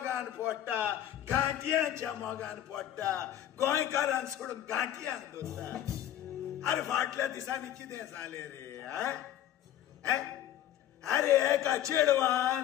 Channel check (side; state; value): right; quieter; 11.5 dB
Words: पडटा गांठयांच्या मोगान पडटा गोंयकारांक सोडून गांठयांक दवरता अरे फाटल्या दिसांनी कितें जालें रे अरे एका चेडवान